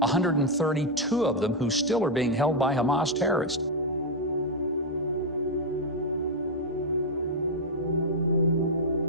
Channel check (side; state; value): both; normal; correlation 0.00